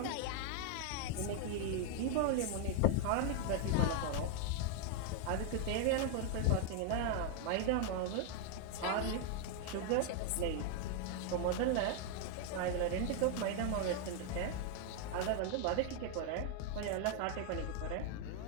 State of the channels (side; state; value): both; different; correlation 0.00